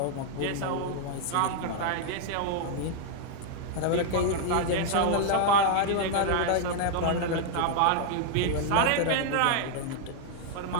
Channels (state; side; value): different; both; correlation 0.00